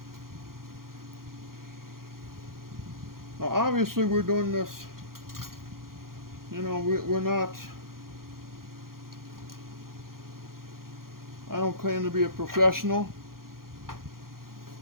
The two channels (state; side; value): late; left; 0.92 ms